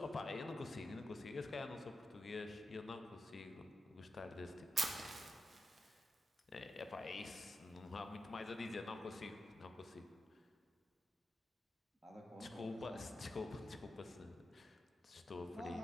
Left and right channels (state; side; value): normal; both; correlation 0.89